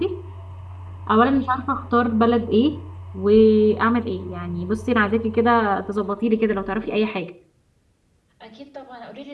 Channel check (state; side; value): identical; both; correlation 1.00